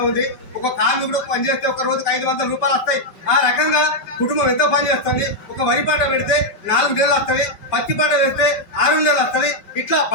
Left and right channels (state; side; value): late; right; 5.3 ms